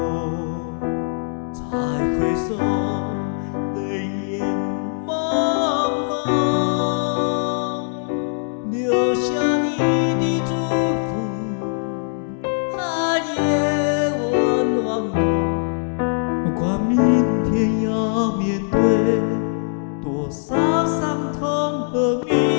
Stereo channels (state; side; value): silent; right; digital silence